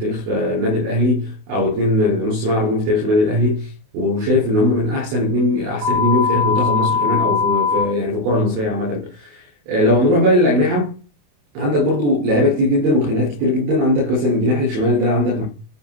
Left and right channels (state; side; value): late; left; 28 ms